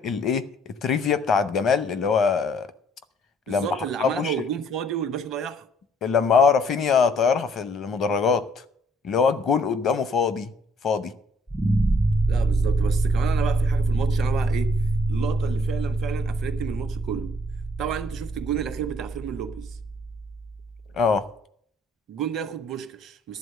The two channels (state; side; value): normal; both; correlation 0.63